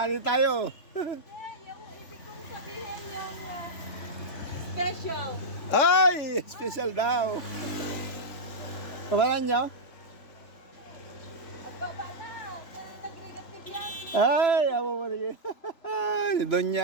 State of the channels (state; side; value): late; right; 3.5 ms